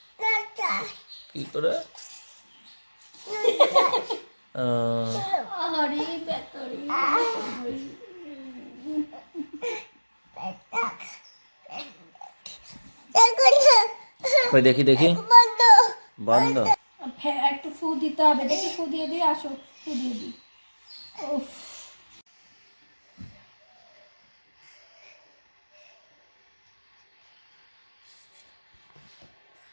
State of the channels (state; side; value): inverted; both; correlation -1.00